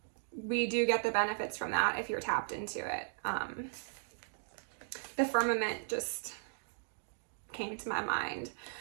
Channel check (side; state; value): left; silent; digital silence